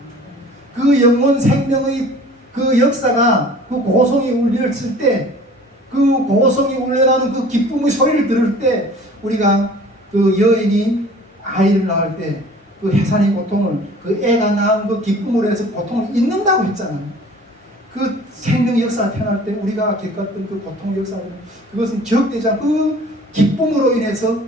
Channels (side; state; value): both; normal; correlation 0.47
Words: 그 영혼 생명의 그 역사가 그 고성이 울렸을 때 그 고성이 울려나는 그 기쁨의 소리를 들을 때 우리가 그 여인이 아이를 낳을 때 그 해산의 고통을 그 애가 낳은 그 기쁨으로 해서 고통을 잊는다고 했잖아요. 그 생명의 역사가 태어날 때 우리가 겪었던 그 고통의 역사는 그것은 기억되지 않고 그 기쁨으로 인해서